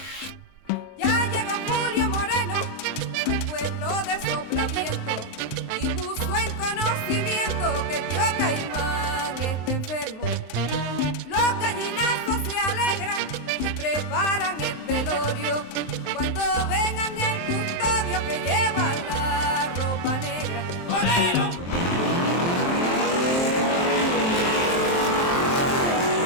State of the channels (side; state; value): right; late; 23 ms